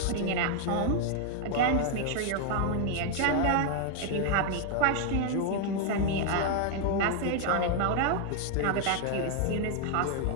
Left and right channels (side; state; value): both; different; correlation 0.00